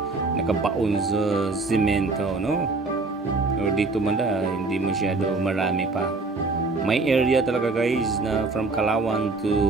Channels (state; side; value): quieter; left; 3.6 dB